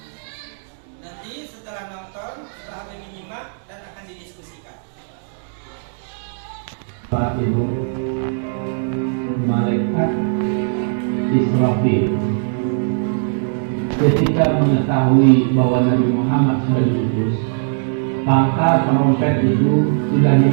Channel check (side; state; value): left; silent; digital silence